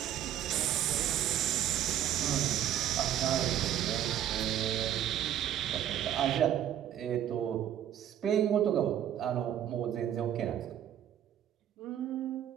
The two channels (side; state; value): left; quieter; 10.9 dB